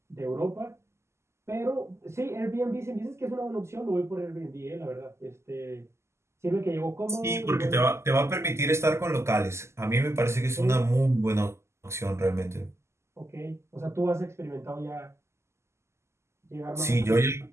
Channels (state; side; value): late; left; 0.13 ms